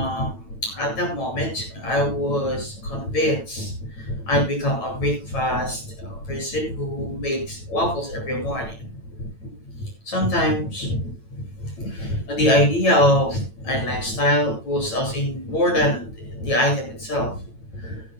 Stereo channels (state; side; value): late; right; 9.0 ms